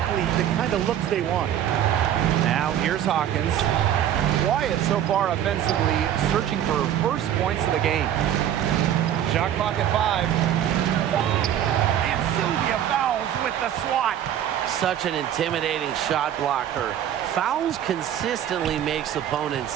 the kind of looks they want. Now here's Hawkins. Quiet so far offensively, searching for her first points of the game. Shot clock at 5. And Sylvia fouls with the swat. Such an intimidating shot blocker. Fouls consistently makes opponents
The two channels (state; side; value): quieter; left; 10.6 dB